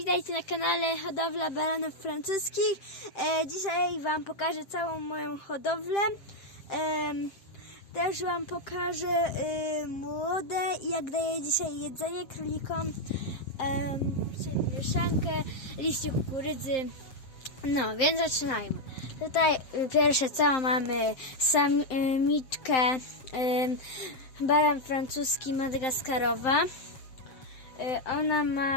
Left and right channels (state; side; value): late; right; 7.7 ms